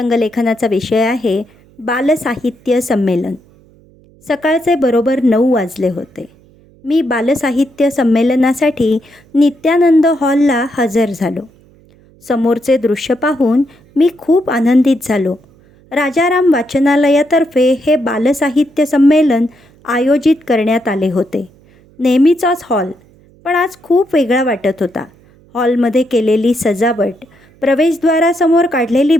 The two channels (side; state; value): right; noise; hum, 29 dB below the sound